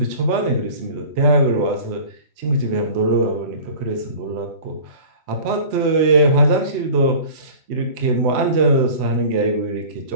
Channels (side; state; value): left; late; 3.1 ms